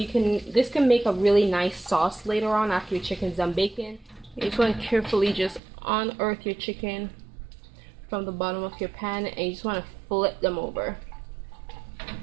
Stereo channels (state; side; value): drops out; left; at 5.6 s